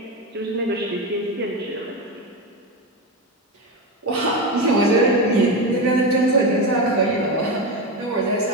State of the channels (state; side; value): normal; both; correlation 0.16